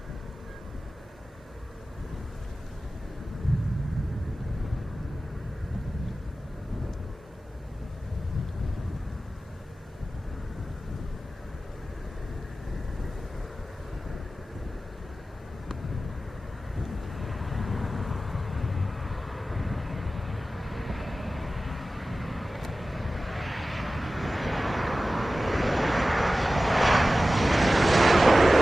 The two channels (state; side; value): normal; both; correlation 0.95